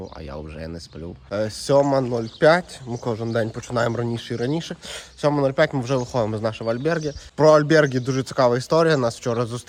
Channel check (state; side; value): identical; both; correlation 1.00